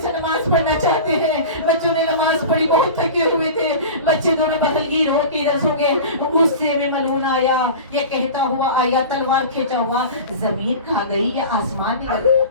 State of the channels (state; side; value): inverted; both; correlation -0.33